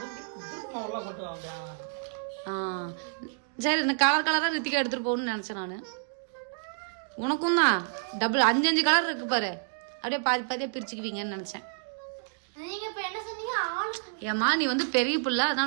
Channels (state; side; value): silent; left; digital silence